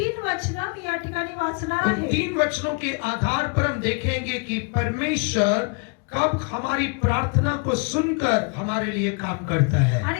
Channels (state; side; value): quieter; right; 35.2 dB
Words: वचन मी या ठिकाणी वाचणार उन आहे। 3 वचनों के आधार पर हम देखेंगे कि परमेश्वर कब हमारी प्रार्थना को सुनकर हमारे लिए काम करता है।